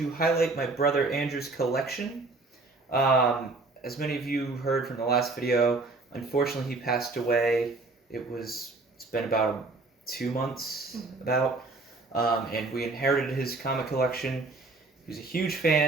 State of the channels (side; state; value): left; quieter; 3.5 dB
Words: highlight my brother Andrew's collection. As many of you heard from the last video, unfortunately he passed away. It's been about 2 months, and we inherited his comic collection. He was a huge